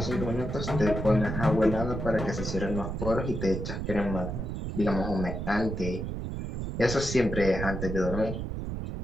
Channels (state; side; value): noise; right; rumble, 4 dB below the sound